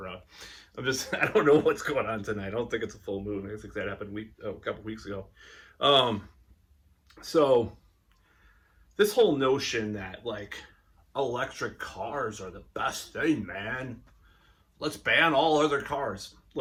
I don't know what's going on tonight. I don't think it's a full moon. I think that happened a couple weeks ago. Um, so this whole notion that like electric cars are the best thing, man. Let's ban all other cars.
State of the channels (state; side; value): identical; both; correlation 1.00